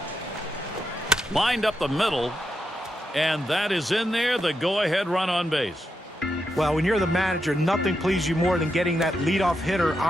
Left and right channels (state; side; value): normal; both; correlation 0.85